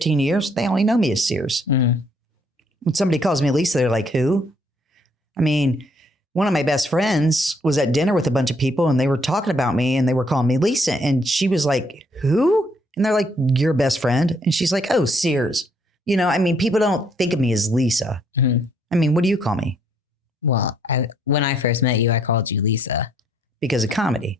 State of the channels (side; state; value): both; normal; correlation 0.68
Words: years. They only know me as Sears. Mm. When somebody calls me Lisa, they're like, who? I mean, one of my best friends was at dinner with a bunch of people and they were talking about me and they were calling me Lisa. And she was like, who? And they're like, your best friend. And she's like, oh, Sears. People don't think of me as Lisa. Mm-hmm. I mean, what do you call me? Well, when I first met you, I called you Lisa. Because of